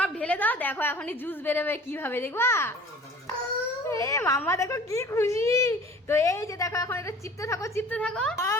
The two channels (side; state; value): both; normal; correlation 0.46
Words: ঢেলে দাও। দেখো এখনই জুস বেরোবে কিভাবে, দেখবা? এ মামা দেখো কি খুশি। তো এই যে দেখো এখন এটা চিপতে থাকো চিপতে থাকো।